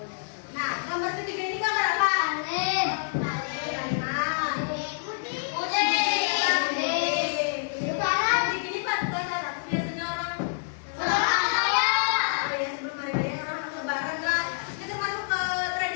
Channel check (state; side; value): silent; right; digital silence